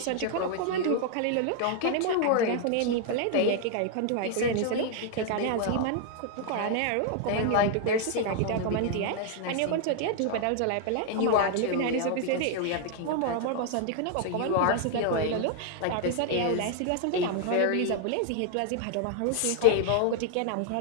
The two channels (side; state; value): both; different; correlation 0.00